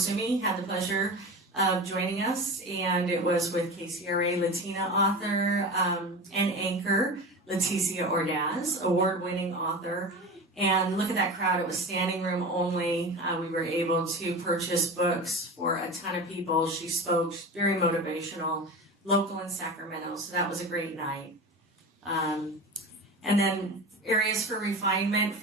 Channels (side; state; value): both; normal; correlation 0.29